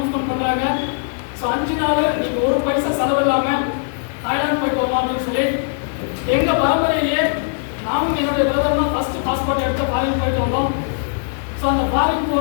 பண்ணுறாங்க. ஸோ 5 நாள் நீங்கள் ஒரு பைசா செலவு இல்லாமல் தாய்லாந்து போயிட்டு வரலாம் அப்படின்னு சொல்லி எங்கள் பரம்பரையிலேயே நானும் என்னுடைய பிரதர்லாம் ஃபஸ்ட்டு பாஸ்போர்ட் எடுத்து ஃபாரின் போயிட்டு வந்தோம். ஸோ அந்த ஃபாரின்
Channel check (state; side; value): silent; right; digital silence